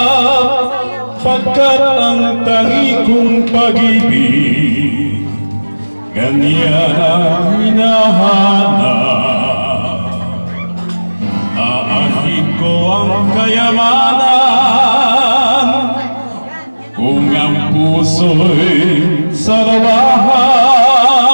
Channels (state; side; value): inverted; both; correlation -1.00